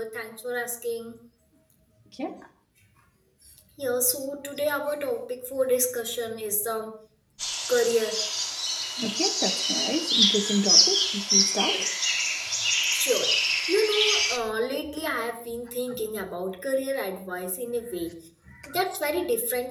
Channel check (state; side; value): identical; both; correlation 1.00